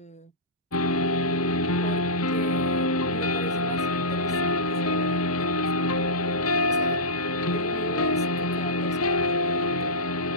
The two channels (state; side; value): normal; both; correlation -0.16